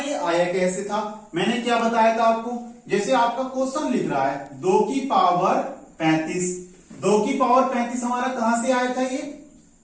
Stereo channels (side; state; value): both; identical; correlation 1.00